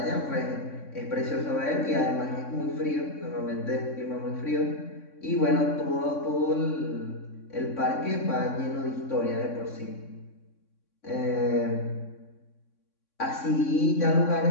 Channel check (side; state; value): right; late; 3.6 ms